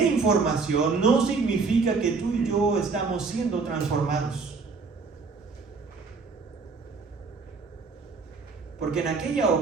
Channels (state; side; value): quieter; left; 4.6 dB